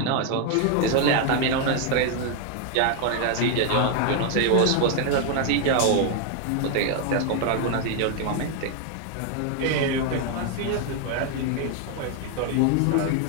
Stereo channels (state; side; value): different; both; correlation 0.01